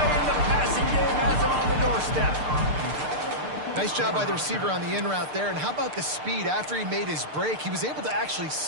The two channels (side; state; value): left; late; 6.7 ms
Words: in the passing game has him on the doorstep. Nice job by the receiver on the in route there. And how about the speed? After he made his break, he was able to actually